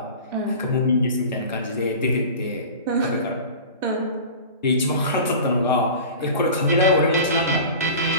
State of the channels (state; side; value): inverted; both; correlation -0.37